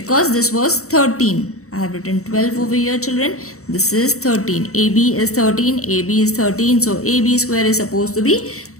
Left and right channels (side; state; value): right; late; 0.64 ms